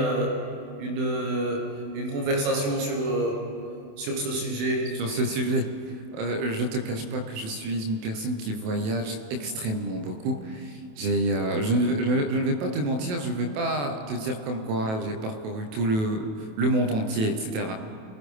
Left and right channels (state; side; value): late; left; 28 ms